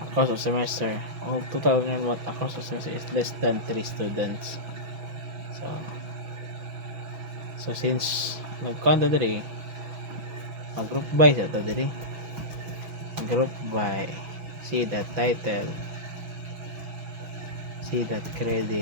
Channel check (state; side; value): late; left; 6.3 ms